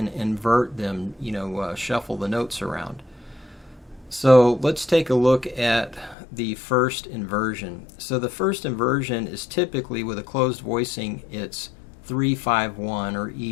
invert them, you know, shuffle the notes around. So let's take a look at the first inversion. So the first inversion is typically, with a closed voicing, it's 3-5-1 or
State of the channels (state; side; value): drops out; right; at 6.2 s